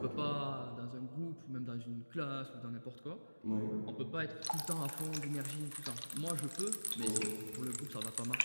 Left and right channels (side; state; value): both; inverted; correlation -1.00